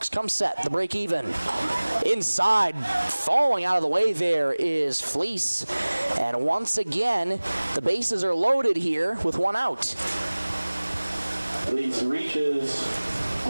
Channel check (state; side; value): inverted; both; correlation -1.00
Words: come set. The break even. Inside, falling out of the way there is Fleece. And once again, the bases are loaded here with 1 out. Fleece reaches